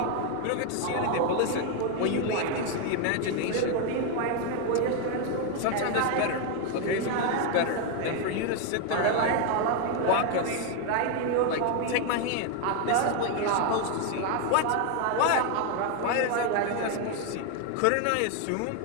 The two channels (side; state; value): both; different; correlation 0.01